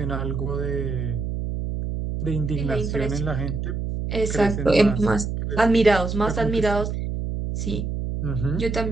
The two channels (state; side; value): noise; right; hum, 3 dB below the sound